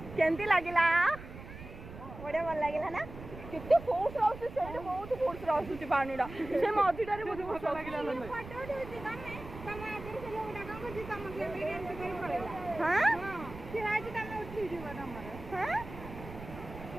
केमती लागला बड़े भल लागला ना केते फोर्स आउस से बहुत फोर्स आउस पानीडा से मझीटारे बहुत फोर्स लागला फोटो उठौची तमे तमे आगे से लोग डाका को जी तम के भी एंड कर पड़ेला हां फिर आज तमे उठी जीवा हमर हां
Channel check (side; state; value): right; noise; rumble, 13 dB below the sound